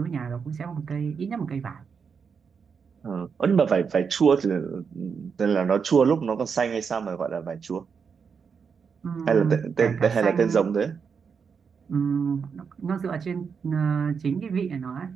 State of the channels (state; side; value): quieter; left; 6.1 dB